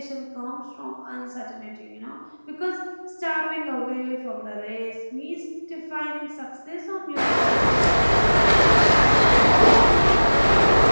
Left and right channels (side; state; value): both; inverted; correlation -1.00